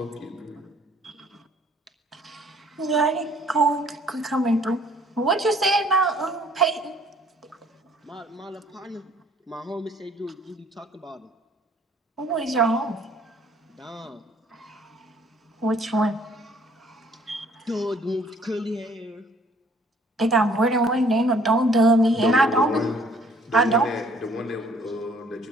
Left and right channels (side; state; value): both; normal; correlation 0.59